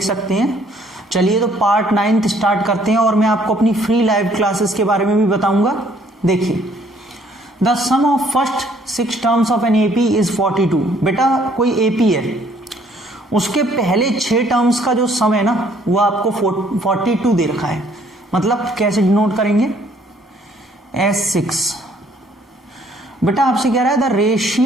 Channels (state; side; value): normal; both; correlation 0.62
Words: सकते हैं। चलिए तो पार्ट 9th स्टार्ट करते हैं और मैं आपको अपनी फ्री लाइव क्लासेस के बारे में भी बताऊंगा। देखिए, the sum of first 6 terms of an AP is 42। बेटा कोई एपी है, उसके पहले 6 टर्म्स का जो सम है ना वो आपको 42 दे रखा है। मतलब कैसे डिनोट करेंगे? S6। बेटा आपसे कह रहा है the